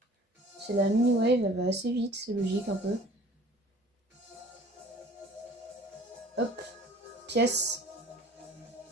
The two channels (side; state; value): both; normal; correlation 0.49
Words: C'est la mini wave, elle va assez vite, c'est logique un peu. Hop, pièce.